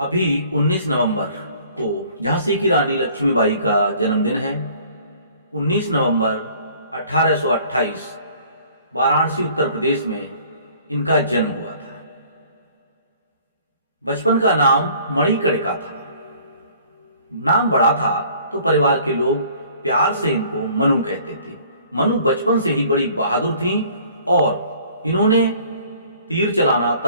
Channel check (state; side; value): inverted; both; correlation -0.54